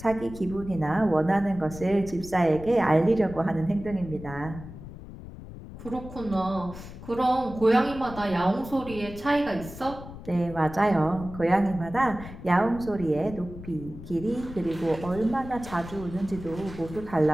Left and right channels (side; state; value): left; noise; rumble, 13 dB below the sound